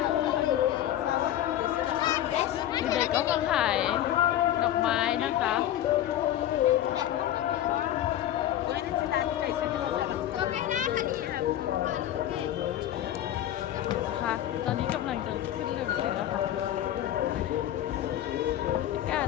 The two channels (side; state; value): right; quieter; 12.4 dB